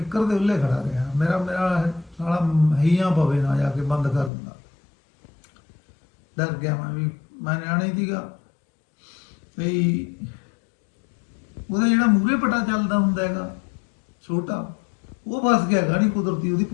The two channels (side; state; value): right; drops out; at 4.3 s